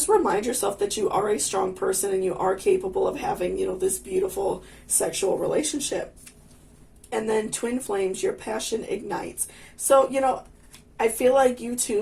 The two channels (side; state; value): both; identical; correlation 1.00